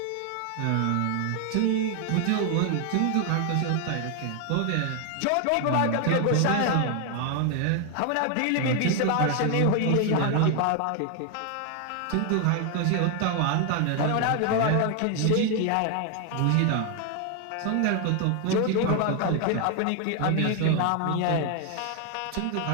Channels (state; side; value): different; both; correlation 0.01